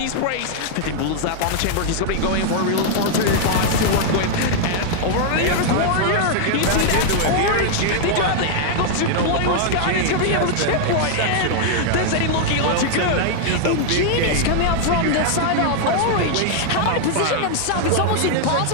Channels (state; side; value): different; both; correlation 0.00